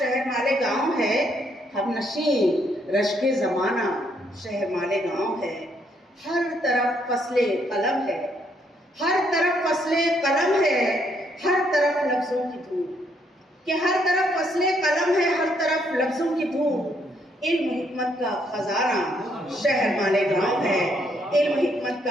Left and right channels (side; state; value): both; normal; correlation 0.72